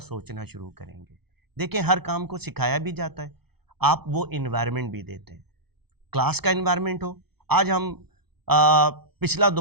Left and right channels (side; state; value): left; late; 0.97 ms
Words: سوچنا شروع کریں گے. دیکھیں ہر کام کو سکھایا بھی جاتا ہے، آپ وہ انوائرمنٹ بھی دیتے ہیں. کلاس کا انوائرمنٹ ہو، آج ہم پچھلا